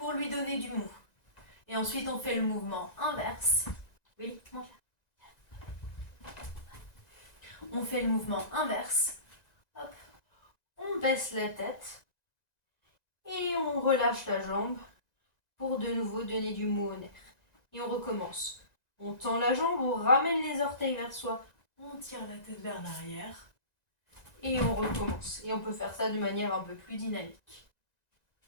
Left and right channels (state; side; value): late; right; 1.9 ms